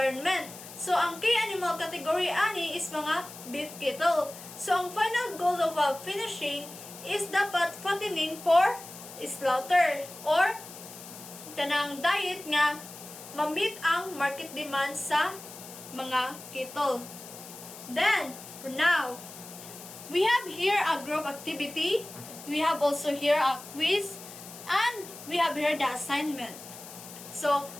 So, ang key animal category ani is mga beef cattle. So, ang final goal of finishing is dapat fattening for slaughter or kanang diet nga ma-meet ang market demand sa mga cattle. Then, for now, we have here a group activity. We have also here a quiz, and we have here the assignment. So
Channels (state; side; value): noise; left; hiss, 15 dB below the sound